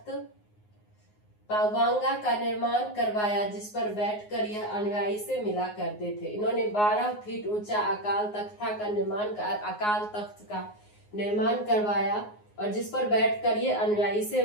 पावांगा का निर्माण करवाया जिस पर बैठकर यह अनुयायी से मिला करते थे। इन्होंने 12 फीट ऊंचा अकाल तख्त का निर्माण करवाया और जिस पर बैठकर ये अनुयायी से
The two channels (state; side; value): late; right; 9.6 ms